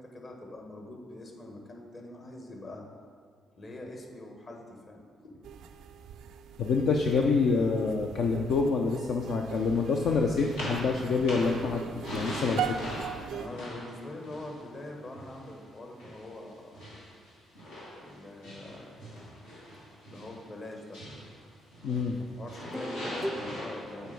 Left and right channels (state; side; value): quieter; right; 3.1 dB